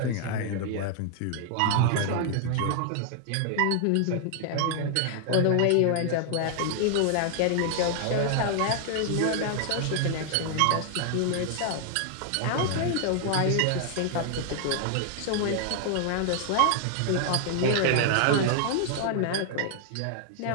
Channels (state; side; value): different; both; correlation 0.00